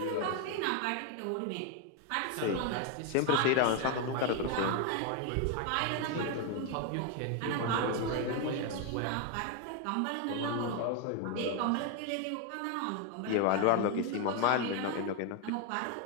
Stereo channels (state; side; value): different; both; correlation 0.01